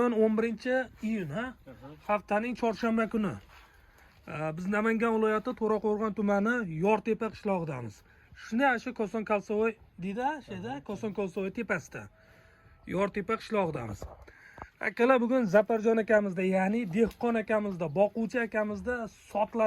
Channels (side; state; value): both; identical; correlation 1.00